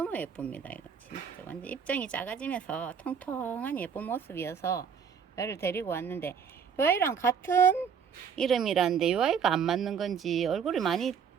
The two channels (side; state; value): left; quieter; 7.0 dB